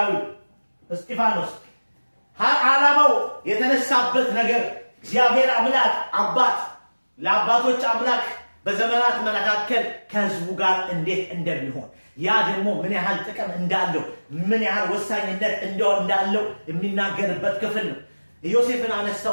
እስጢፋኖስ ዓላማው የተነሳበት ነገር እግዚአብሔር አምላክ አባት ለአባቶች አምላክ በዘመናት መካከል ከህዝቡ ጋር እንዴት እንደሚሆን ያ ደግሞ ምን ያህል ጥቅም እንዳለው ምን ያህል ወሳኝነት እንዳለው የሚናገርበት ክፍል ነው። ዮሴፍን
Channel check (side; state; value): both; inverted; correlation -1.00